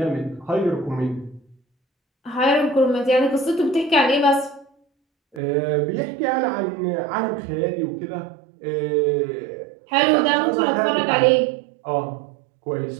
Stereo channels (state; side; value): drops out; left; at 5.4 s